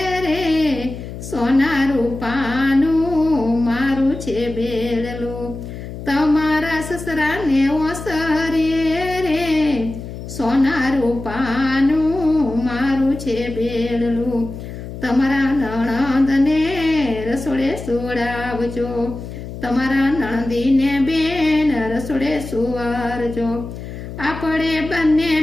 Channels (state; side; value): noise; left; hum, 10 dB below the sound